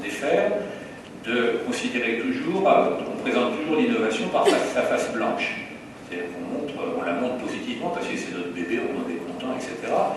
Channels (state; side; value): identical; both; correlation 1.00